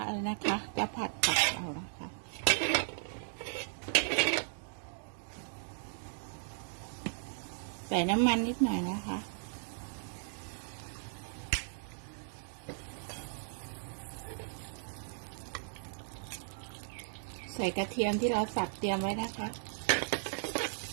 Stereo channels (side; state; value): left; silent; digital silence